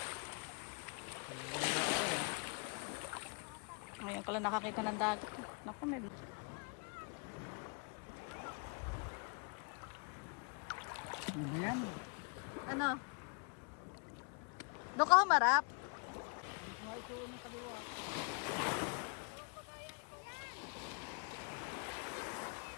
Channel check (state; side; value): quieter; right; 36.1 dB